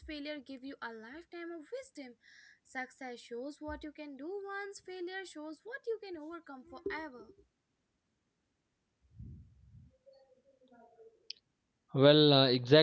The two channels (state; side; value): identical; both; correlation 1.00